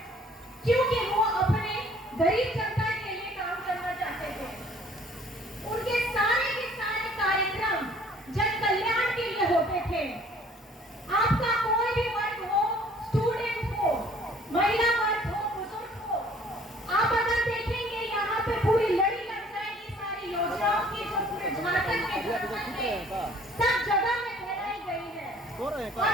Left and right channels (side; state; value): both; normal; correlation 0.56